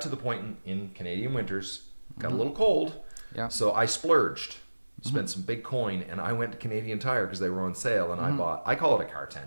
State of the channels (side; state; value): both; inverted; correlation -1.00